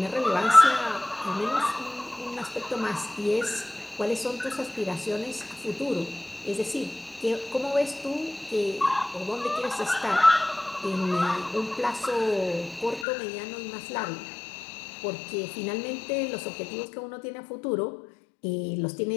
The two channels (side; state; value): right; drops out; at 13.1 s